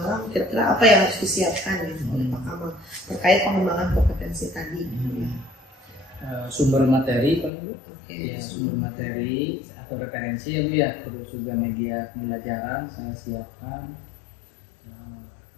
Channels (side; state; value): right; drops out; at 7.5 s